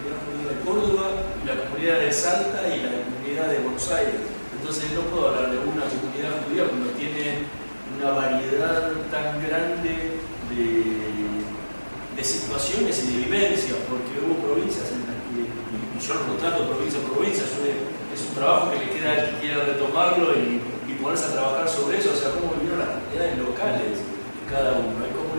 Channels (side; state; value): both; inverted; correlation -1.00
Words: judía de Córdoba, y la comunidad de Salta y la comunidad de Buenos Aires. Entonces no puedo hablar de una comunidad judía cuando tiene una variedad tan grande de situaciones y de vivencias, porque hubo provincias en las que, y yo no trato provincia por provincia, es un trabajo que le queda al que quiera retomarlo y ponerse a trabajar sobre eso. O sea, cómo vivieron las comunidades locales cada uno. Hay